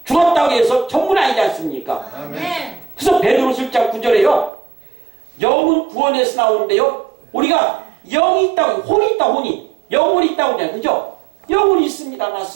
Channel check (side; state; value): left; drops out; at 4.5 s